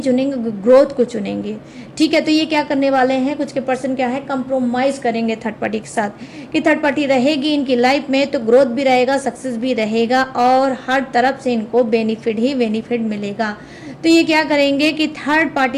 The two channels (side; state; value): both; identical; correlation 1.00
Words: ग्रोथ को चुनेंगे, ठीक है। तो ये क्या करने वाले हैं, कुछ के पर्सन क्या है, कंप्रोमाइज़ करेंगे थर्ड पार्टी के साथ, कि थर्ड पार्टी रहेगी इनकी लाइफ में तो ग्रोथ भी रहेगा, सक्सेस भी रहेगा, और हर तरफ से इनको बेनिफिट ही बेनिफिट मिलेगा। तो ये क्या करेंगे कि थर्ड